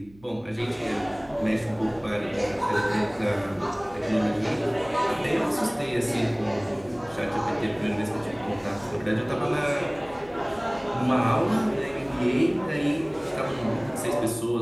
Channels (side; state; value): right; noise; hum, 25 dB below the sound